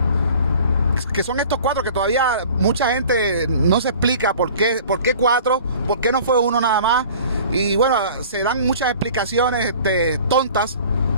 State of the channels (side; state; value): both; inverted; correlation -0.46